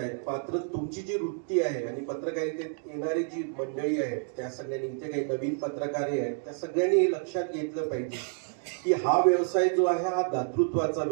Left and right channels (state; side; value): silent; left; 58 dB below the other